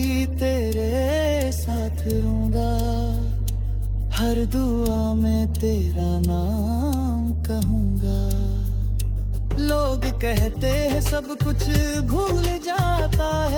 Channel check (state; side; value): identical; both; correlation 1.00